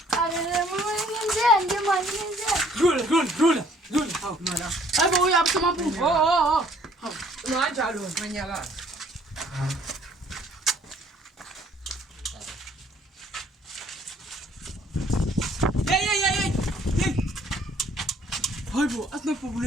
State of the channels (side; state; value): both; normal; correlation 0.60